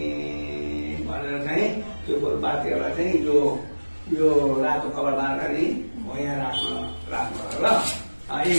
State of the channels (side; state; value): both; inverted; correlation -1.00